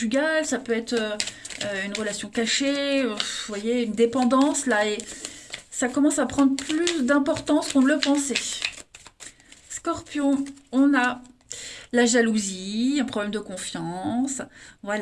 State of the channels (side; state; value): both; identical; correlation 1.00